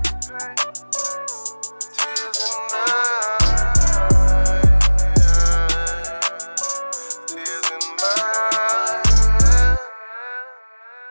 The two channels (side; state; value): both; inverted; correlation -1.00